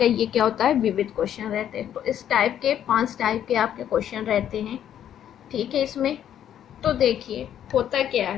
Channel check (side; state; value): right; quieter; 10.3 dB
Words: ये क्या होता है, विविध क्वेश्चन रहते हैं। तो इस टाइप के 5 टाइप के आपके क्वेश्चन रहते हैं, ठीक है। इसमें तो देखिए होता क्या